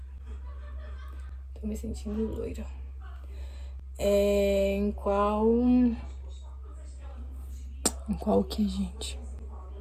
Tô me sentindo loira. Em qual... Em qual que, gente?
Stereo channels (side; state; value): both; identical; correlation 1.00